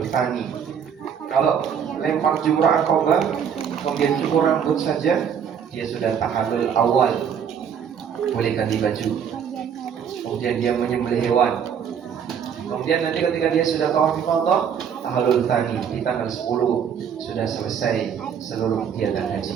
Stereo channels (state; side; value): quieter; left; 7.8 dB